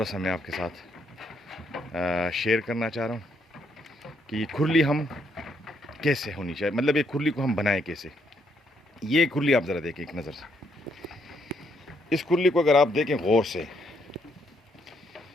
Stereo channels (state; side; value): normal; both; correlation 0.73